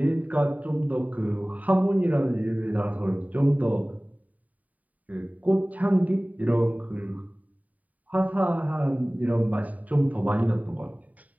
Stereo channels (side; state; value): left; late; 0.073 ms